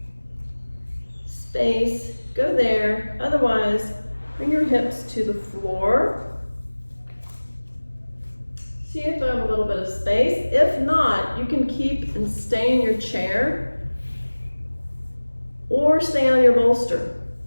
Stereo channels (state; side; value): inverted; both; correlation -1.00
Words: space, go there. Otherwise, bring your hips to the floor. See if I have a little bit of space. If not, you can keep and stay in your chair or stay on your bolster.